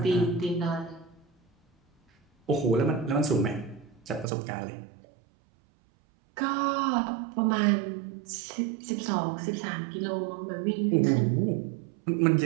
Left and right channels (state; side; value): drops out; left; at 4.2 s